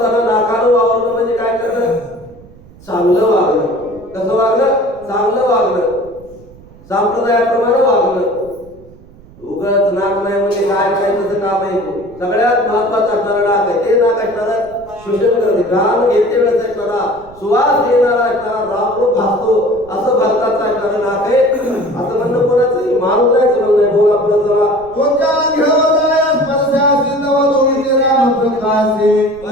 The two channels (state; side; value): noise; right; rumble, 23 dB below the sound